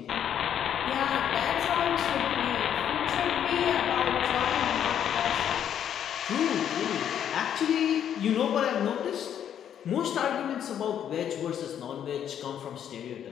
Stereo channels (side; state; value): right; quieter; 9.5 dB